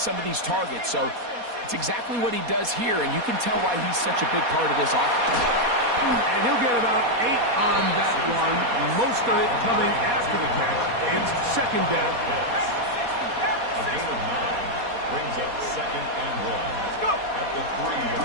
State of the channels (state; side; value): late; left; 4.2 ms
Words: of these targets. So it's exactly what he does here, and you can tell why he's such a big part of this offense. And he'll get about 8 on that one, most of it coming after the catch. It's second down. A gain of 9 brings up 2nd and 1. Let's go. At the